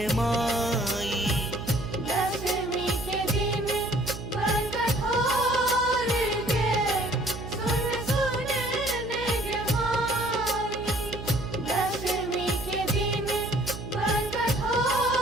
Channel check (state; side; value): noise; right; hum, 10 dB below the sound